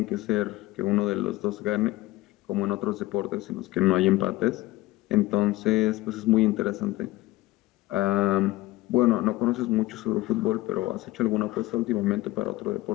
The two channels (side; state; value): right; quieter; 18.0 dB